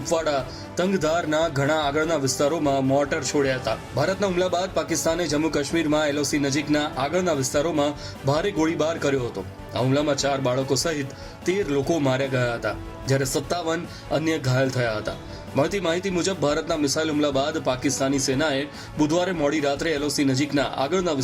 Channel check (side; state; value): both; identical; correlation 1.00